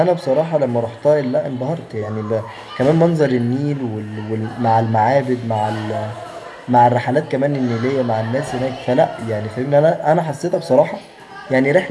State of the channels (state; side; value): identical; both; correlation 1.00